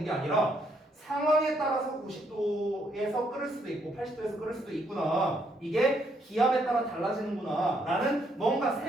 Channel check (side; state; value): both; normal; correlation 0.73